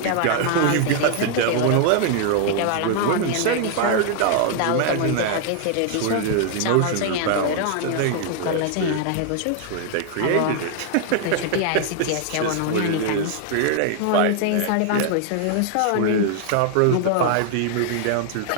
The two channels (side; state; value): both; different; correlation 0.00